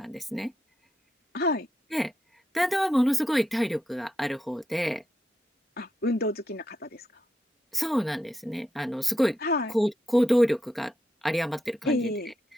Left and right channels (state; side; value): normal; both; correlation 0.84